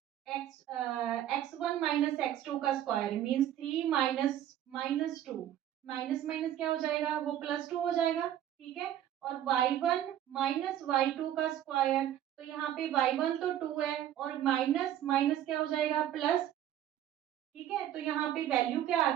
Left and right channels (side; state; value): left; quieter; 11.5 dB